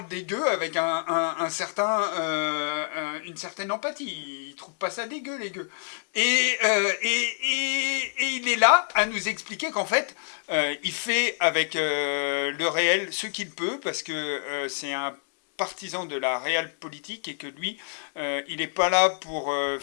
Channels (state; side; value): silent; right; 60 dB below the other